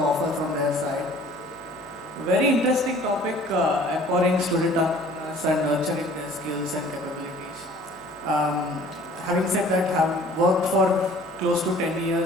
from their side. A very interesting topic, empowering student entrepreneurs and nurturing their skills and capabilities. Having said that, I have worked for close to 10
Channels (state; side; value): normal; both; correlation 0.51